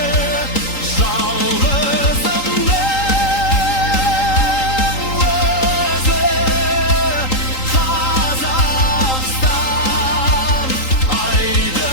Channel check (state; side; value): late; right; 3.8 ms